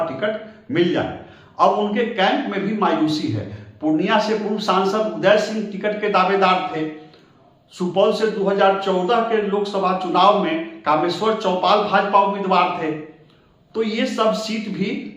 टिकट मिल जाए। अब उनके कैंप में भी मायूसी है। पूर्णिया से पूर्व सांसद उदय सिंह टिकट के दावेदार थे। सुपौल से 2014 के लोकसभा चुनाव में कामेश्वर चौपाल भाजपा उम्मीदवार थे। तो ये सब सीट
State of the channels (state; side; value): identical; both; correlation 1.00